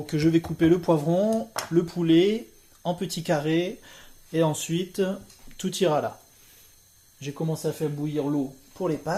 je vais couper le poivron, le poulet en petits carrés et ensuite, tout ira là. J'ai commencé à faire bouillir l'eau pour les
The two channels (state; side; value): identical; both; correlation 1.00